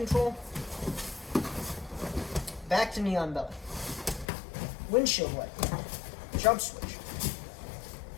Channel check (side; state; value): right; drops out; at 4.2 s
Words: Back to knee on belly. Windshield wiper. Jump switch.